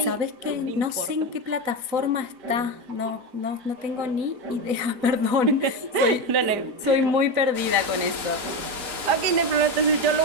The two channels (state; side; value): late; left; 4.0 ms